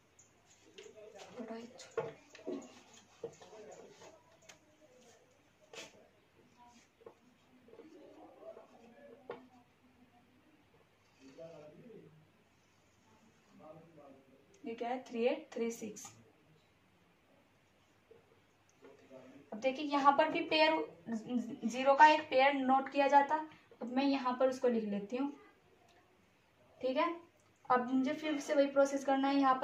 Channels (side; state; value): both; identical; correlation 1.00